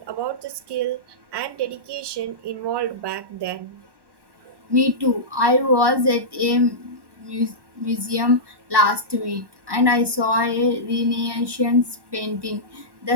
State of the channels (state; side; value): late; left; 1.1 ms